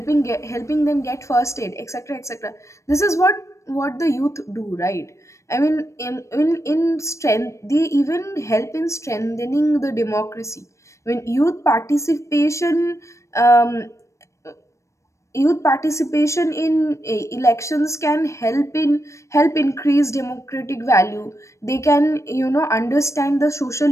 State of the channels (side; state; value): right; late; 0.15 ms